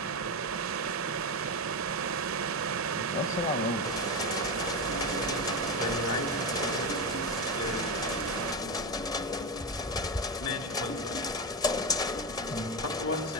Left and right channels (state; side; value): normal; both; correlation 0.14